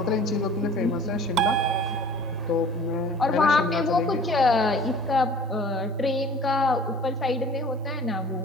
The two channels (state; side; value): normal; both; correlation 0.46